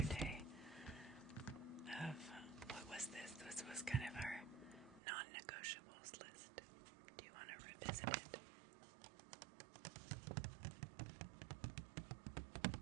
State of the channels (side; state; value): left; drops out; at 5.0 s